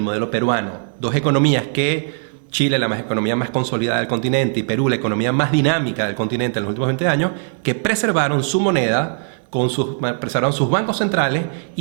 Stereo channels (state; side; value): silent; left; 66 dB below the other